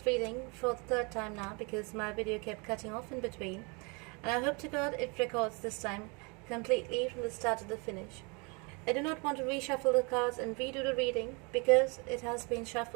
reading for the third time now because my video kept cutting off in between, and I hope to God it records this time completely from the start to the finish. I do not want to reshuffle the cards and redo the reading because it has been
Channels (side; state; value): left; quieter; 30.9 dB